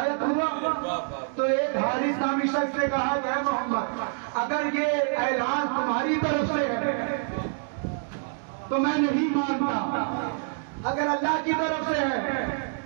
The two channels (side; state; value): left; silent; 60 dB below the other